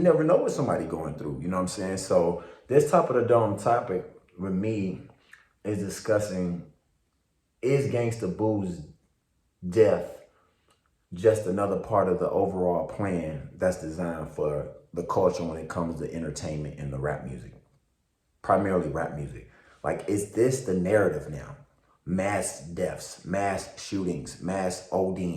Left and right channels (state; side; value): identical; both; correlation 1.00